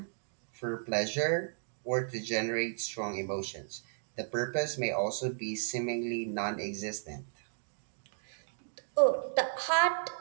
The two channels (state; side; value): silent; left; digital silence